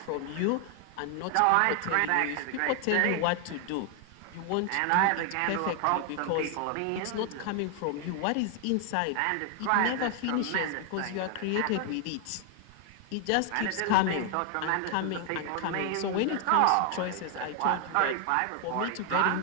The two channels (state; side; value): different; both; correlation 0.00